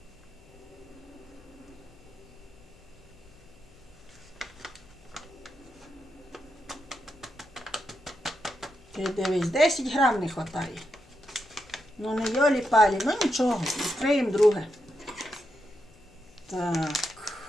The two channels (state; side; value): noise; left; hum, 26 dB below the sound